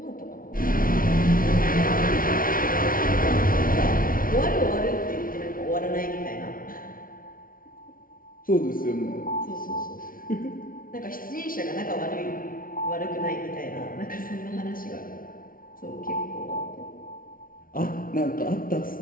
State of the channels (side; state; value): right; late; 0.41 ms